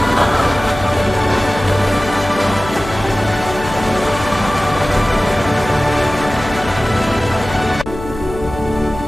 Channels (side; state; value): left; noise; hum, 11 dB below the sound